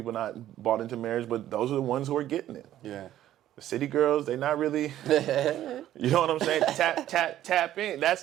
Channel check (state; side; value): quieter; left; 12.6 dB